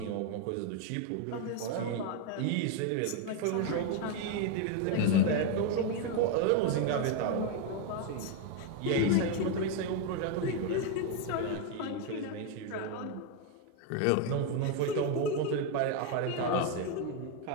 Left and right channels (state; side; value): different; both; correlation 0.01